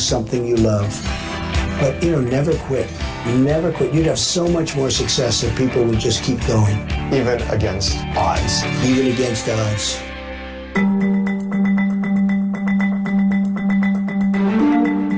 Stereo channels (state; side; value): identical; both; correlation 1.00